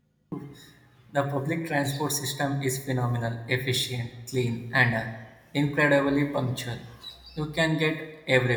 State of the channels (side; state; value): both; identical; correlation 1.00